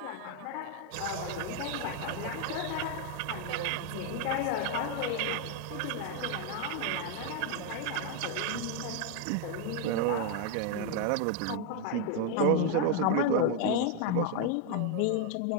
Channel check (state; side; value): different; both; correlation 0.01